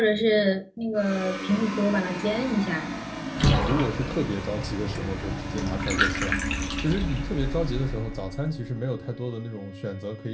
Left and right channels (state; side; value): identical; both; correlation 1.00